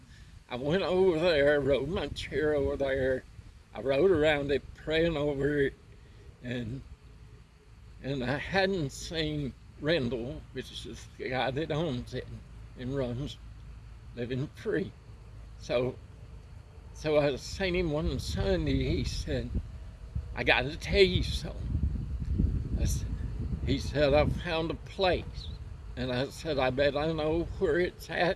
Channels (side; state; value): both; identical; correlation 1.00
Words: I went over there, rode my chair over there. I rode around it, praying over it, and I hadn't seen Rendell, which is the guy that owns it and runs Living Free. So I seen him one Sunday. He said, I got to tell you something. He said, I found a place. And I said, I bet I know where it's